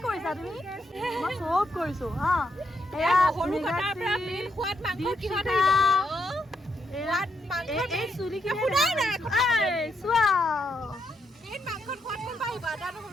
কৰিছা তুমি মই চব কৰিছো হা এয়া এই চুলি কি চোৱা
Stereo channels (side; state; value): both; normal; correlation 0.79